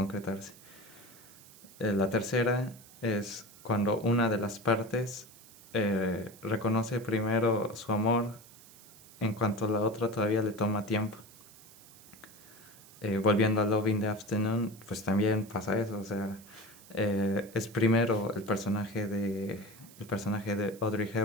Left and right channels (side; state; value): right; noise; hiss, 21 dB below the sound